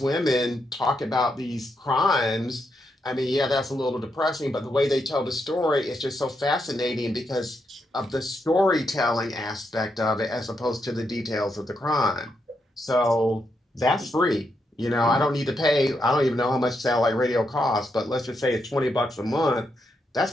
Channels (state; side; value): normal; both; correlation 0.81